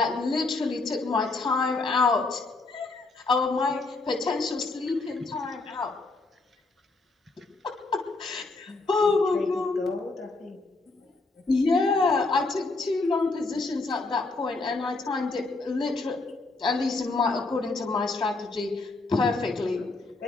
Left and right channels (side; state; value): right; quieter; 3.5 dB